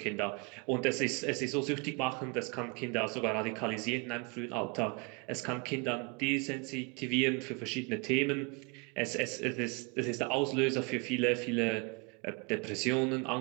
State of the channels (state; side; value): quieter; left; 30.9 dB